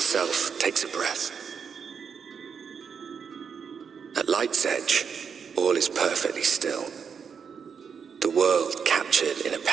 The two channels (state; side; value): quieter; left; 6.6 dB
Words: takes a breath. At light's edge, all is perfectly still. The world captured in a